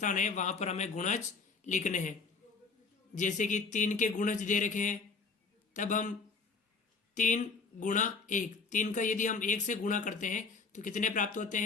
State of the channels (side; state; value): right; quieter; 4.7 dB